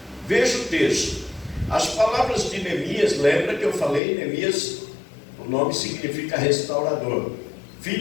veja o texto. As palavras de Neemias, lembra que eu falei, Neemias o nome significa restaurador,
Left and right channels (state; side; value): drops out; right; at 4.0 s